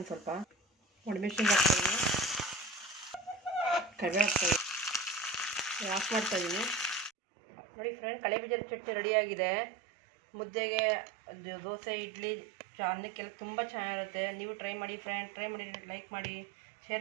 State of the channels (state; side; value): drops out; left; at 7.1 s